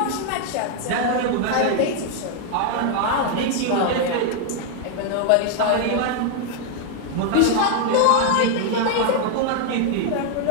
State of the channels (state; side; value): different; both; correlation 0.00